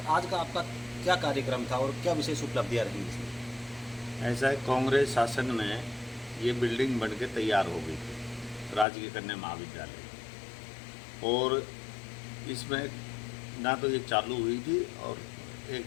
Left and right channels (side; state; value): right; drops out; at 8.8 s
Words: आज का आपका क्या कार्यक्रम था और क्या विशेष उपलब्धियाँ रही इसमें? ऐसा है, कांग्रेस शासन में ये बिल्डिंग बन के तैयार हो गई थी, राजकीय कन्या महाविद्यालय, और इसमें ना तो ये चालू हुई थी और